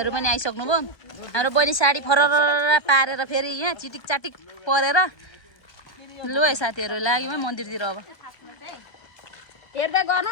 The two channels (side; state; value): right; late; 1.2 ms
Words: पनि आइसक्नु भयो। हाम्रो बहिनी साडी फरर पारेर फेरि यहाँ चिटिक चाटिक परेर लु है साथीहरु लाग्यौँ है मन्दिरतिर। अब हेर्दै गर्नु